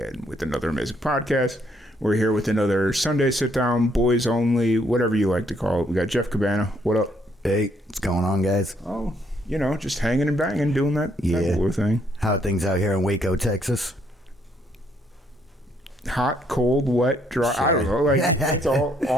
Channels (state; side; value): normal; both; correlation 0.70